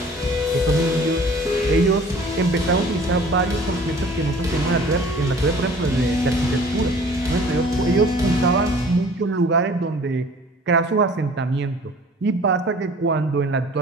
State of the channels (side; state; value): both; normal; correlation 0.49